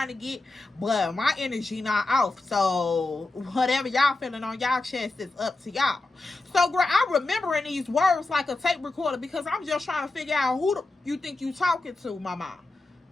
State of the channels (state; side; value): quieter; right; 3.1 dB